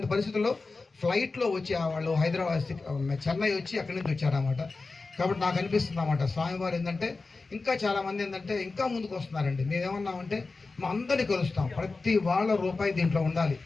పరిస్థితుల్లో ఫ్లైట్లో వచ్చి వాళ్ళు హైదరాబాద్ చెన్నై వచ్చి అక్కడి నుంచి వచ్చారన్నమాట. కాబట్టి నాకు అనిపిస్తుంది అన్నమాట స్వామివారు ఏంటంటే ఇంకా చాలామంది ఏంటంటే ఇంకా ముందుకు వస్తున్నారండి. మేమేమన్నామంటే మా అందరినీ కలుస్తాం, ప్రతి వాళ్ళ రూపాయి దీంట్లో ఉండాలి,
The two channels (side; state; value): right; quieter; 3.8 dB